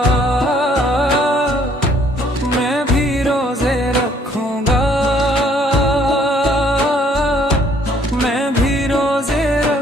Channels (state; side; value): normal; both; correlation 0.62